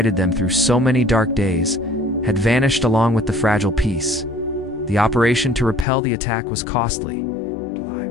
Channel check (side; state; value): right; drops out; at 5.9 s